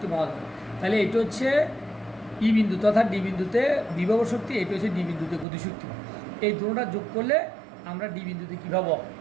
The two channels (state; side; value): drops out; left; at 5.5 s